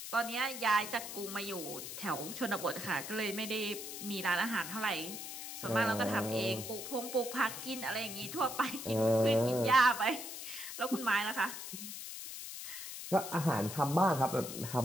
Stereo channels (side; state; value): left; noise; hiss, 8 dB below the sound